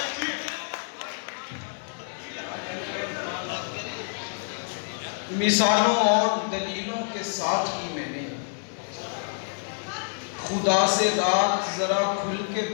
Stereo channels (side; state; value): right; silent; 60 dB below the other